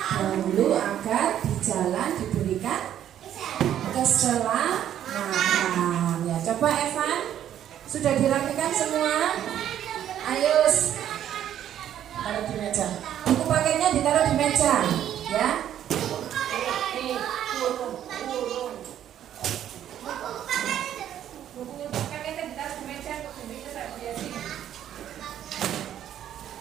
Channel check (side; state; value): left; quieter; 10.7 dB